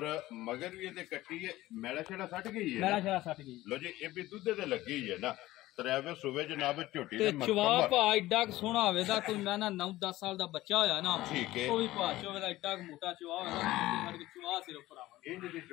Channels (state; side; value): quieter; right; 16.8 dB